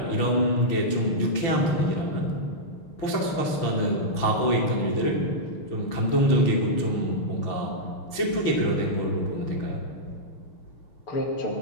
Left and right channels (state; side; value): late; right; 6.0 ms